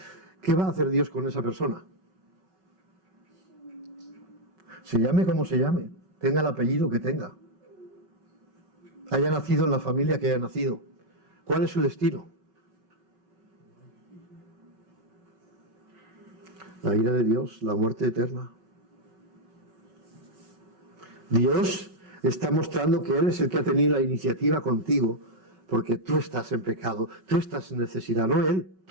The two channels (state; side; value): late; left; 5.3 ms